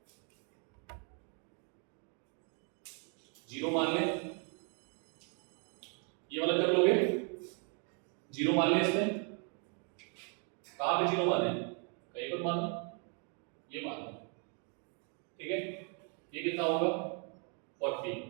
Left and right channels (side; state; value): left; quieter; 39.1 dB